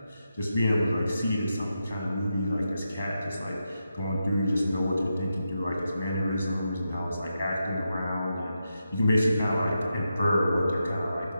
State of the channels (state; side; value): inverted; both; correlation -0.87